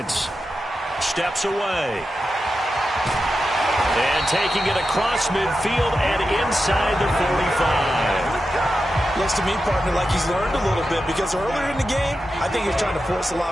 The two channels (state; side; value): normal; both; correlation 0.90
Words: Steps away. And taking it across midfield and inside the 45. Looks to me, partner, like he's learned a little bit because earlier in the game, I think he was trying to force a